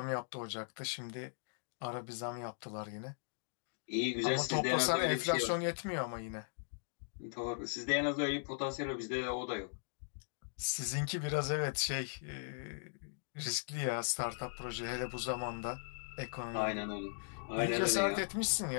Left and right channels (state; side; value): silent; right; digital silence